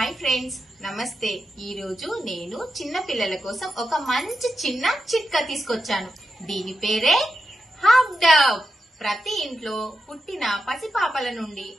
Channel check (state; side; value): normal; both; correlation 0.88